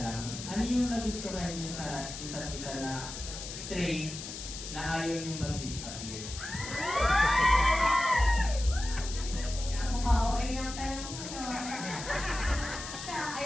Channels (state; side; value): noise; left; hiss, 9 dB below the sound